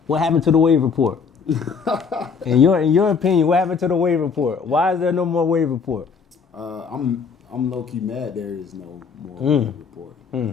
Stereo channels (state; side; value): quieter; right; 5.7 dB